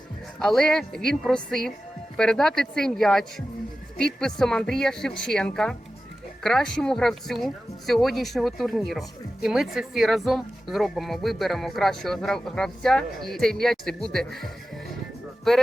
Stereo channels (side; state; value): both; normal; correlation 0.94